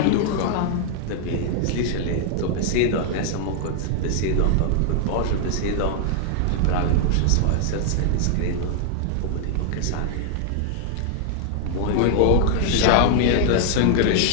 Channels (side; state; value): both; different; correlation 0.00